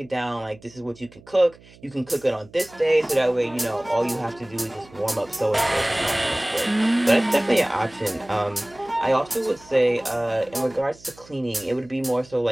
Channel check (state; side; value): noise; right; hum, 24 dB below the sound